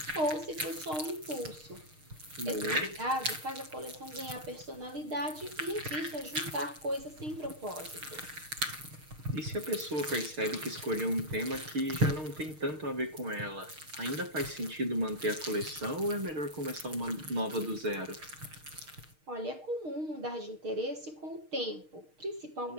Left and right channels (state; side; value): late; left; 6.5 ms